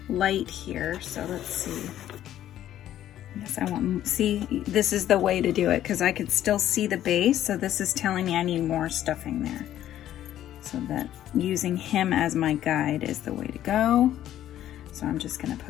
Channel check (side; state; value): right; quieter; 12.1 dB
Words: light here, so let's see. Yes, I want, see, this is the way to do it because I could still see the base, so this is telling me I need more stuffing there. So that using him as my guide is the way to go. So I'm just gonna